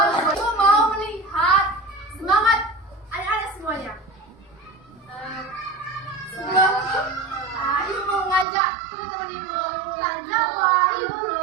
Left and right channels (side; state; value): left; drops out; at 8.5 s